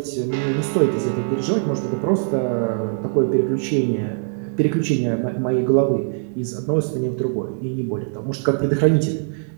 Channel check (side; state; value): left; silent; 64 dB below the other